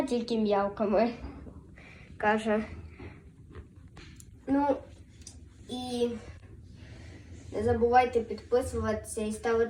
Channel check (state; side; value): identical; both; correlation 1.00